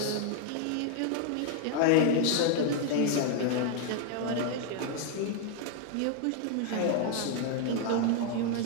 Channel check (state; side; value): different; both; correlation 0.00